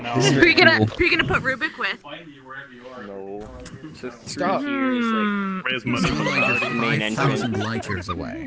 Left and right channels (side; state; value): both; identical; correlation 1.00